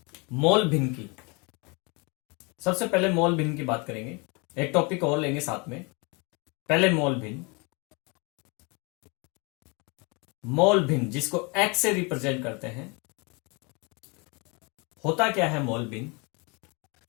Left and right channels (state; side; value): quieter; right; 30.5 dB